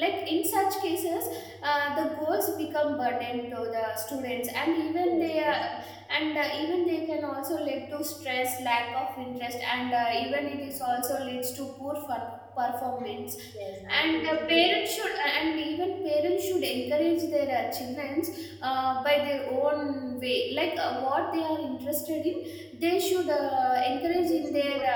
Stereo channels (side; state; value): both; identical; correlation 1.00